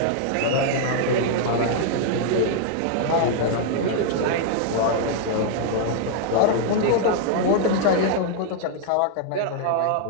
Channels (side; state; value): both; different; correlation 0.00